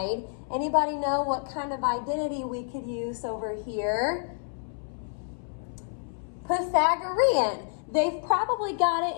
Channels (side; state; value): right; silent; 59 dB below the other